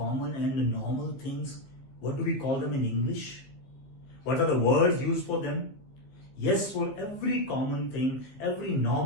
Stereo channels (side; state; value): right; late; 15 ms